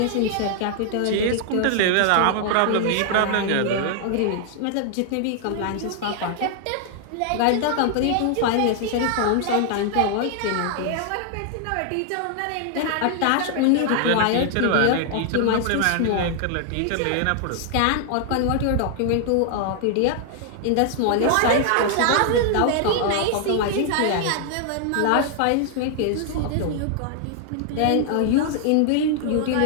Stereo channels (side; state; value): both; different; correlation 0.00